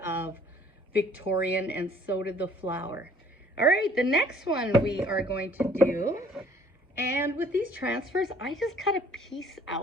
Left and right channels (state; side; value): normal; both; correlation 0.57